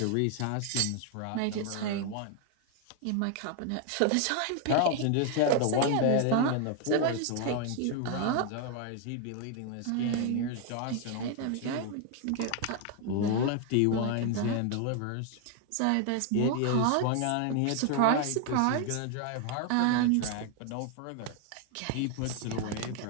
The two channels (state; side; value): different; both; correlation 0.00